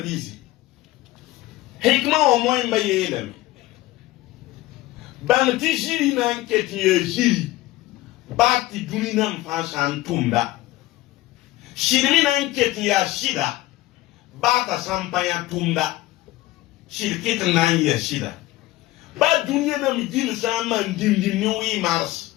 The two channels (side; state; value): right; quieter; 17.5 dB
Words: hikma o moy mbayelem ban ti jiri nan keti jiri bati dunina mfashan tumda shirmi nan keti ya shida bata sampaya tumda shirkit nan ya shida ba dunya nam jil saman dimdim ni wi mars